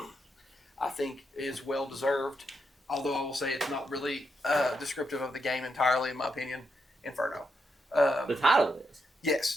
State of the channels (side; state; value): both; normal; correlation 0.82